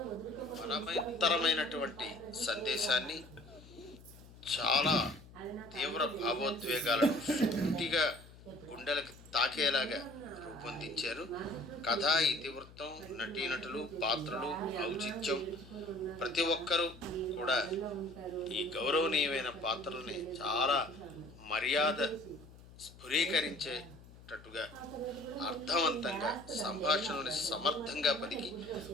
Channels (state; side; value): noise; left; hum, 20 dB below the sound